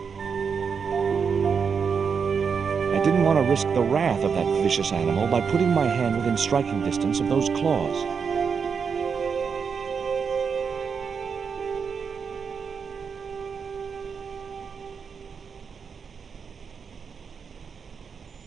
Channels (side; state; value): left; quieter; 6.1 dB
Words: I didn't want to risk the wrath of that vicious animal by putting my hand within striking distance of those claws.